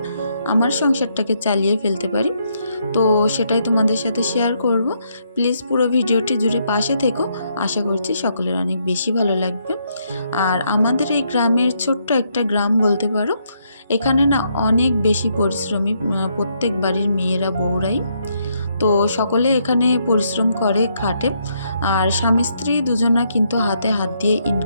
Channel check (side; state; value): both; inverted; correlation -0.75